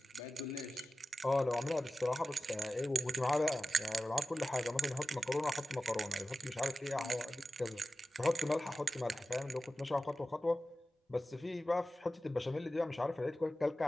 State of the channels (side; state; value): both; normal; correlation 0.94